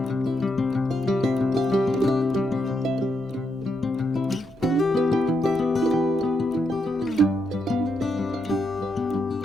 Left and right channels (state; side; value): normal; both; correlation 0.81